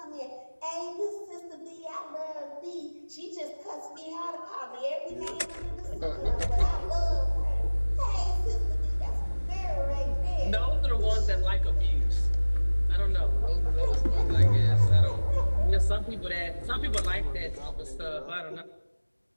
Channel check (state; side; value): inverted; both; correlation -1.00